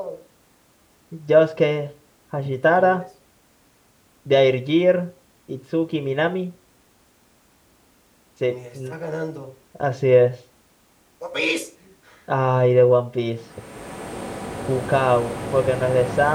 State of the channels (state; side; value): identical; both; correlation 1.00